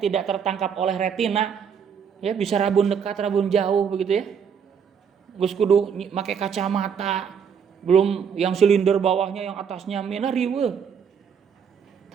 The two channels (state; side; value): quieter; left; 7.2 dB